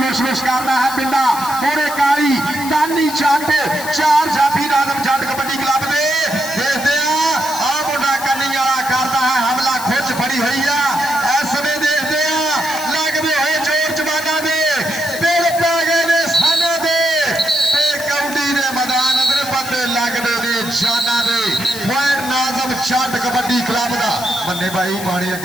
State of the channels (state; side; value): noise; left; hiss, 10 dB below the sound